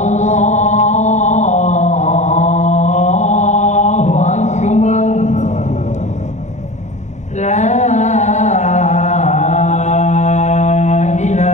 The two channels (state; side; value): late; right; 0.34 ms